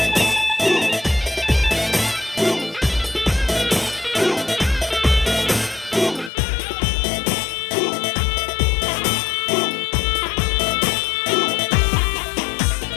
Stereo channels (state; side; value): drops out; right; at 6.3 s